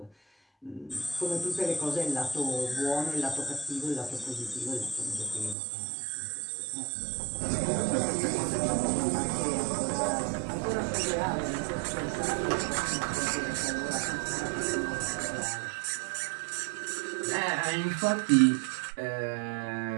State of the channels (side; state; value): left; drops out; at 5.6 s